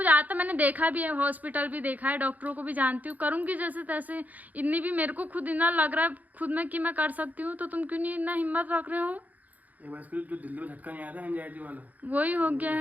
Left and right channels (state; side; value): late; left; 0.079 ms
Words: आता, मैंने देखा भी है, हॉस्पिटल भी देखा है, डॉक्टरों को भी जानती हूँ, करूंगी जैसे तैसे। इतनी भी मेरे को खुद इतना लग रहा है खुद में कि मैं कर सकती हूँ, तो तुम क्यों नहीं इतना हिम्मत रख रहे हो? एक बार इसको जो दिल्ली में झटका नहीं आया था एंजाइटी वाला, वही हो गया